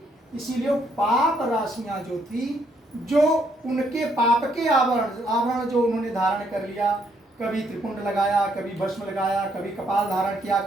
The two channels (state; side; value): normal; both; correlation 0.72